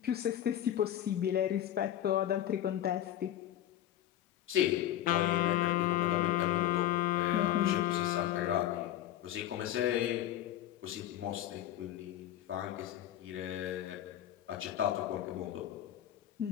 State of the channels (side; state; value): right; quieter; 12.1 dB